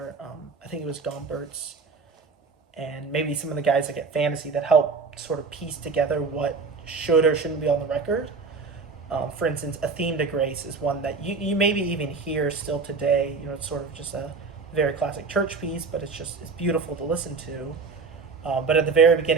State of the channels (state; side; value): quieter; left; 4.6 dB